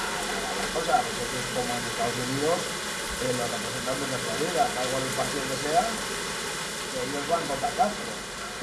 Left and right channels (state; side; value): identical; both; correlation 1.00